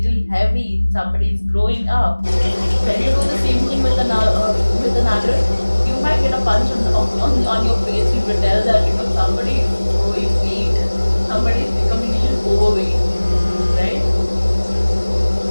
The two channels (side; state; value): both; inverted; correlation -1.00